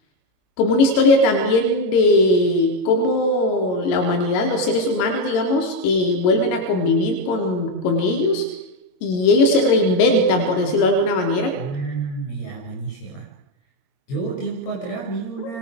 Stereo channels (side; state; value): right; late; 22 ms